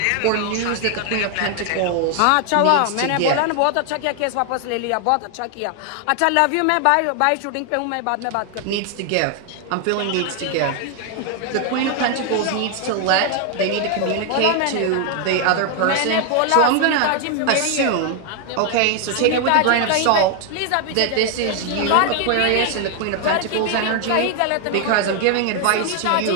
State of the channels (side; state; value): both; different; correlation 0.00